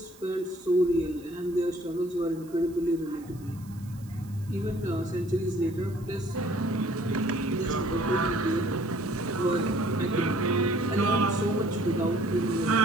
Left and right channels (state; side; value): noise; right; hiss, 25 dB below the sound